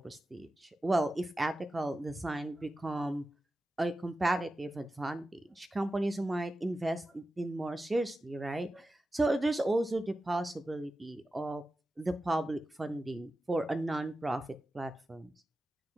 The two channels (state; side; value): normal; both; correlation 0.93